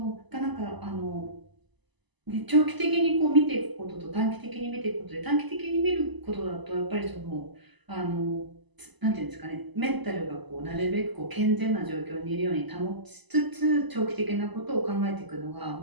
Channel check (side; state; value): left; late; 1.0 ms